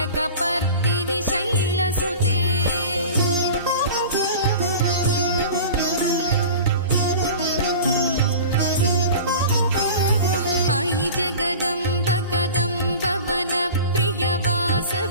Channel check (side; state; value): both; inverted; correlation -0.36